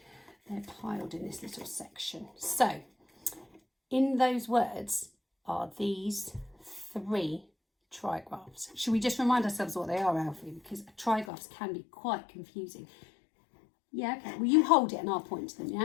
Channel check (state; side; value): drops out; right; at 11.3 s